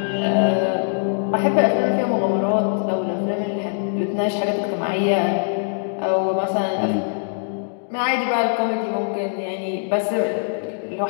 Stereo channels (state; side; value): silent; right; digital silence